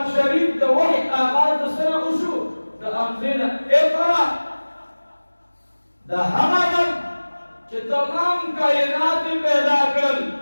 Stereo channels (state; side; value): inverted; both; correlation -1.00